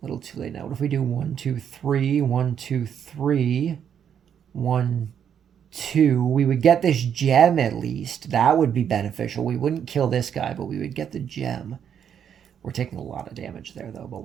too late now. What if we do 1, 2, 3, 1, 2, 3, 1, 2? We would get this gem at least. That would be beneficial. We wouldn't kill this guy, but we would get the gem. We're taking a lot of damage there, though, but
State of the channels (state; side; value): quieter; left; 8.4 dB